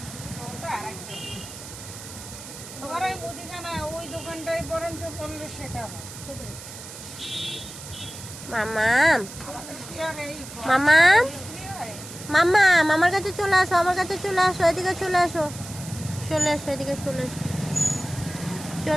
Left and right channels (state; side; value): noise; right; hiss, 13 dB below the sound